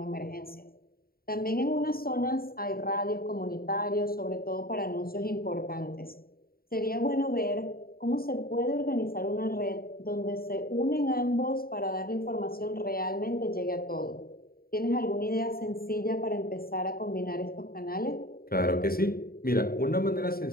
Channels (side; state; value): right; late; 0.43 ms